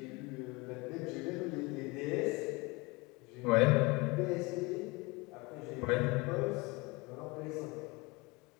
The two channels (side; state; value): right; quieter; 25.4 dB